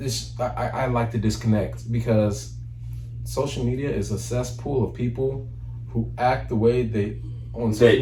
I like to disconnect because social media is a cesspool of people who act the way they on social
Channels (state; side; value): identical; both; correlation 1.00